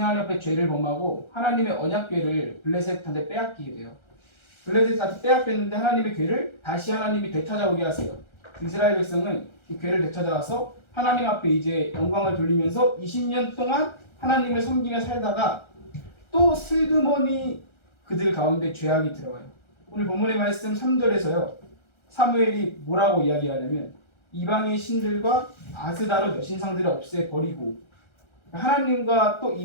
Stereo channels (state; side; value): late; right; 1.3 ms